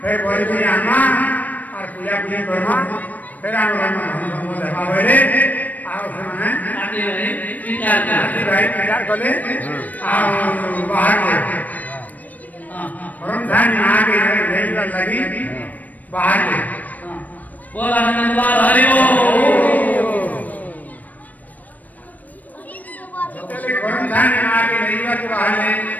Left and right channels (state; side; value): late; right; 0.077 ms